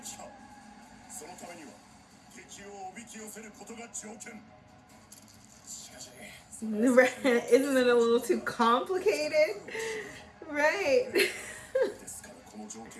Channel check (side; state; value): both; identical; correlation 1.00